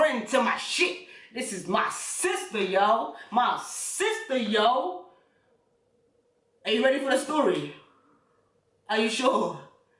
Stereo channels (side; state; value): both; identical; correlation 1.00